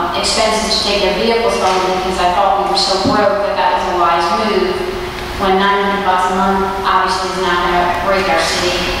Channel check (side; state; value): both; identical; correlation 1.00